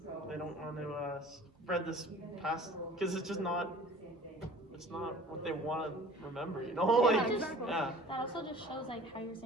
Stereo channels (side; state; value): both; normal; correlation 0.46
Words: they don't want to spread this past because it's just not. It's not what they want to remember, Yeah, like exactly. yeah. That also just shows like how you're